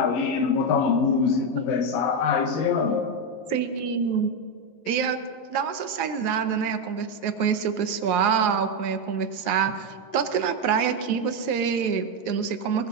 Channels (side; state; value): right; late; 11 ms